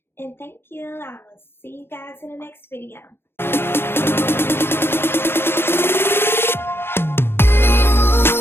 And thank you. I will see you guys in the next video.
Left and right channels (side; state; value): right; late; 0.11 ms